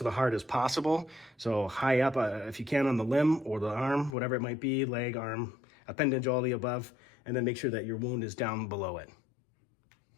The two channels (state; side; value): drops out; right; at 4.2 s